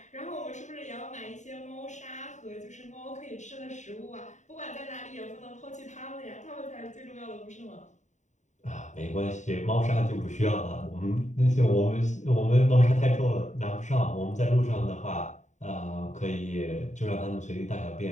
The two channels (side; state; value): right; late; 0.34 ms